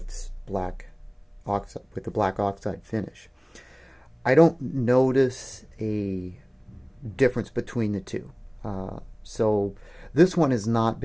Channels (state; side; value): identical; both; correlation 1.00